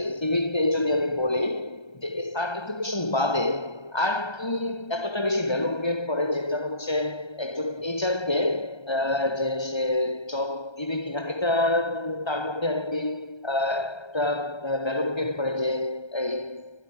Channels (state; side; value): late; right; 1.3 ms